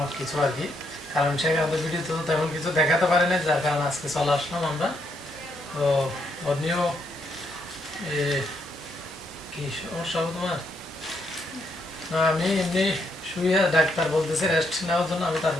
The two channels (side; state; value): both; normal; correlation 0.75